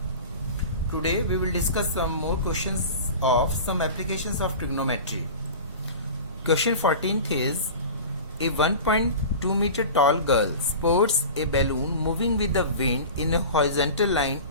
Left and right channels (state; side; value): inverted; both; correlation -0.34